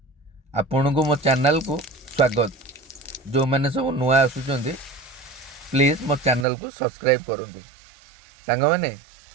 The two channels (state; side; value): drops out; left; at 6.5 s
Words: आपण को मो चैनल को स्वागत। जो मैंने सब नुआ आसुचंदी प्लीज मो चैनल को सब्सक्राइब करूँ। सांग मैंने